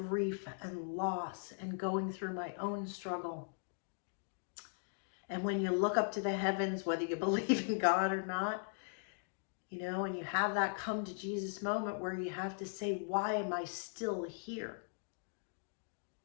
and loss and going through my own struggle, and when you look up to the heavens, whether you believe in God or not, you know, and you have that come to Jesus moment where you have to say, why am I still here?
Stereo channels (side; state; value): right; silent; digital silence